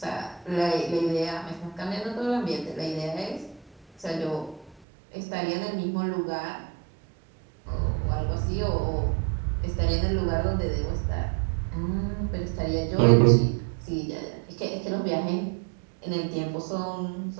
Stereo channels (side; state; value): left; drops out; at 4.8 s